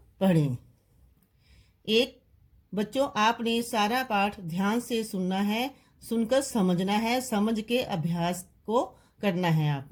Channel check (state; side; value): identical; both; correlation 1.00